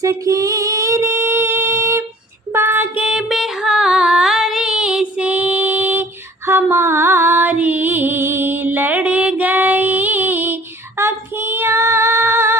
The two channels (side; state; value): both; normal; correlation 0.51